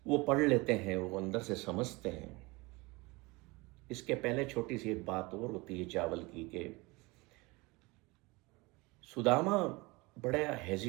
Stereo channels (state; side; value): quieter; left; 24.3 dB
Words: वो पढ़ लेते हैं, वो अंदर से समझते हैं। इसके पहले छोटी सी एक बात और होती है चावल की, कि सुदामा बड़ा